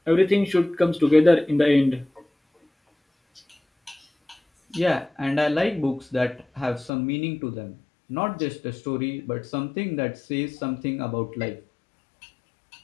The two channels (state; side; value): drops out; right; at 6.9 s